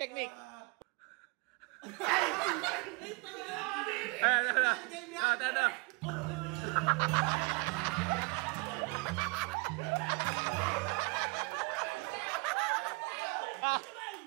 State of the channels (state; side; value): quieter; left; 29.0 dB